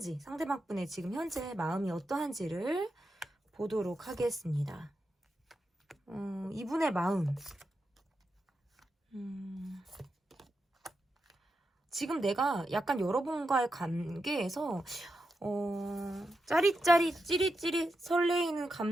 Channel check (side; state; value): both; normal; correlation 0.87